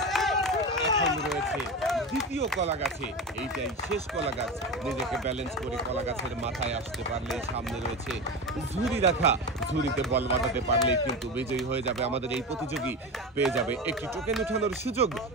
দ্বিতীয় কলা গাছে, এইটাই শেষ কলা গাছ। নিজেকে ব্যালেন্স করে কলা গাছের মাথায় আসতে পারলে সামনে রয়েছে ঝুড়ি রাখা, ঝুড়িতে বল বাঁধাতে পারলেই কিন্তু বিজয়ী হয়ে যাবে আমাদের এই প্রতিযোগী। পেয়ে যাবে একটি টোকেন উঠানোর সুযোগ।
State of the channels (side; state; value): both; normal; correlation 0.23